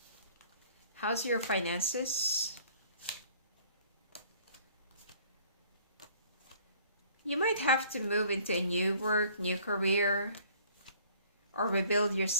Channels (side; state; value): both; inverted; correlation -0.55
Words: How's your finances? You might have to move into a new work, new career, or rebuild